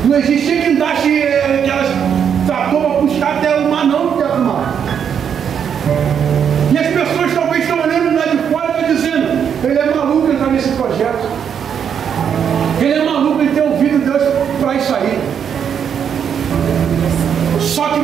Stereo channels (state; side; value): quieter; left; 7.9 dB